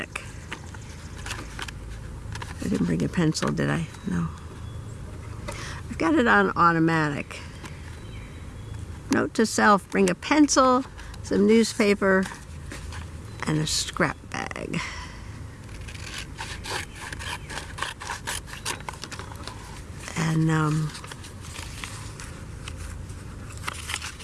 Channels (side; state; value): both; identical; correlation 1.00